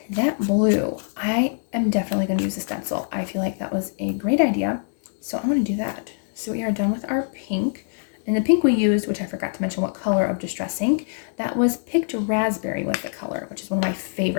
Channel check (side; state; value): right; silent; digital silence